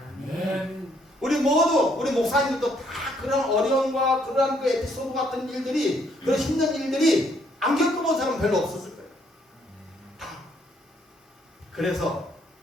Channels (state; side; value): normal; both; correlation 0.69